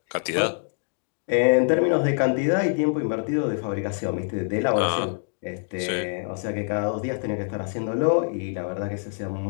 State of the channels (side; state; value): right; silent; digital silence